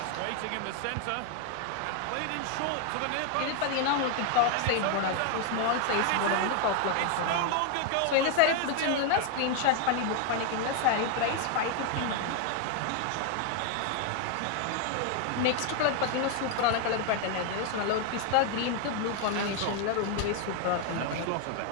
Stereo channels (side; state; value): both; different; correlation 0.00